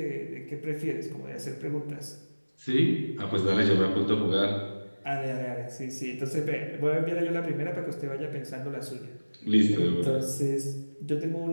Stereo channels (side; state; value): both; inverted; correlation -1.00